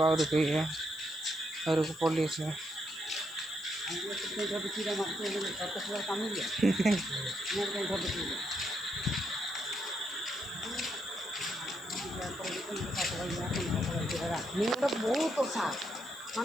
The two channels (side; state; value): left; noise; hiss, 22 dB below the sound